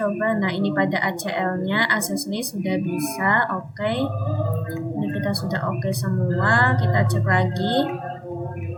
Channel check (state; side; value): identical; both; correlation 1.00